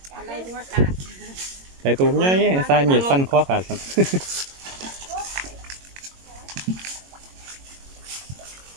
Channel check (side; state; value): left; late; 22 ms